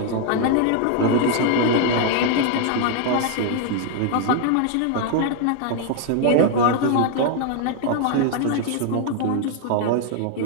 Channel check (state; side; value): different; both; correlation 0.00